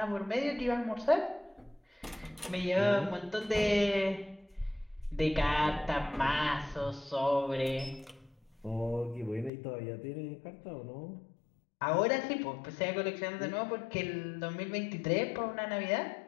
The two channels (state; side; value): drops out; right; at 9.5 s